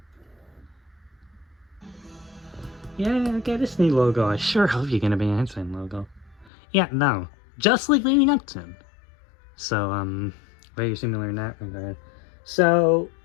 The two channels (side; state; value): right; drops out; at 6.5 s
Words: Yeah, okay, Disney logo. I sure hope you're gonna be an Einstein logo. Yeah, no. Just like leading up to him. So, very similar in that regard. So,